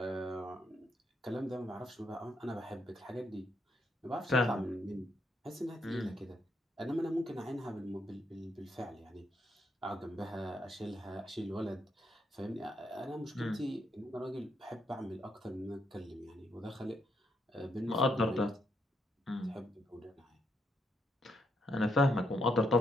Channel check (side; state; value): both; normal; correlation 0.77